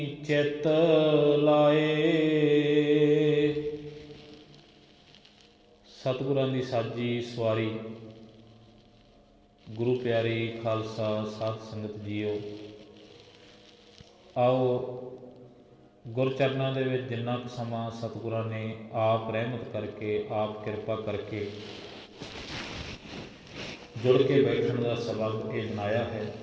ਚਿਤ ਲਾਏ। ਸਤਿਗੁਰਾਂ ਦੀ ਸਾਜੀ ਸਵਾਰੀ ਗੁਰੂ ਪਿਆਰੀ ਖਾਲਸਾ ਸਾਧ ਸੰਗਤ ਜੀਓ, ਆਓ ਗੁਰਚਰਨਾਂ ਦੇ ਵਿੱਚ ਜਿੰਨਾ ਕੁ ਸਮਾਂ ਸਤਿਗੁਰਾਂ ਨੇ ਆਪ ਰਹਿਮਤ ਕਰਕੇ, ਆਪ ਕਿਰਪਾ ਕਰਕੇ ਜੁੜ ਕੇ ਬੈਠਣ ਦਾ ਸਬਬ ਇਹ ਬਣਾਇਆ ਹੈ,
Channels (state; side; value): identical; both; correlation 1.00